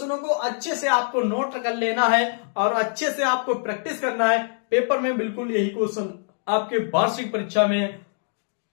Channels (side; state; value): right; silent; digital silence